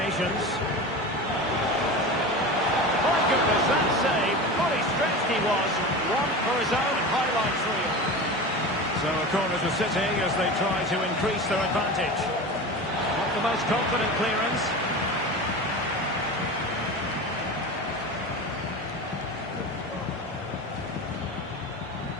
My goodness, that save. Fully stretched he was. One for his own highlights reel. So a corner to City as they try to increase their advantage. Not the most confident clearance.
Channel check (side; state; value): both; normal; correlation 0.29